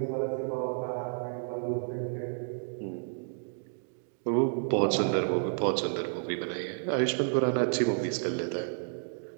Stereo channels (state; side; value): silent; left; digital silence